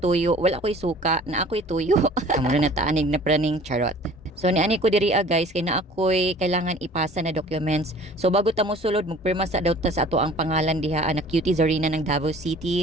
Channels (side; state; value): both; normal; correlation 0.48